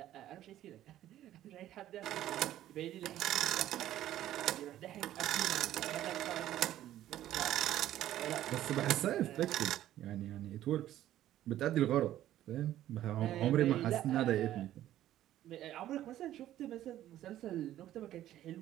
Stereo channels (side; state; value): left; quieter; 12.9 dB